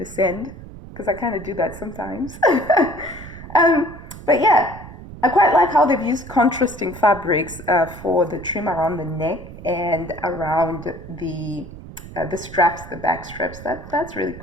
sand, because I kind of do that sometimes. But yeah, I quite like how they've used contrasting fabrics for the trim around the neck and around the straps, the back straps. That's really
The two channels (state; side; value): noise; right; rumble, 15 dB below the sound